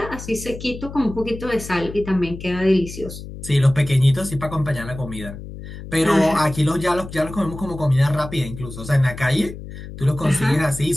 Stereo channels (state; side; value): noise; left; hum, 12 dB below the sound